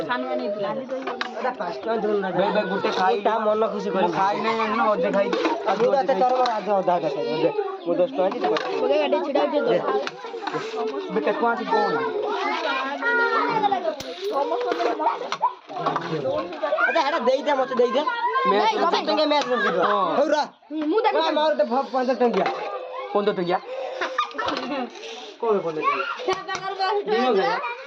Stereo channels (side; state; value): both; identical; correlation 1.00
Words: सानवानी लाली दई एडा 5 टका दोन ना बे गुटे खाईटा मन खुशी कर खाई नै न ओदे खाई अजू तो तोर आज आधा का दे मु 10 टका दी ओगे गाडी छिडा दे बेटा कोन कोन अरे एडा देई दे मते देई दे मैच 15 टका मैच कर दे होरा मु देख मार दे 15 टका 15 टका कोई बोले क्या कर दिनो गया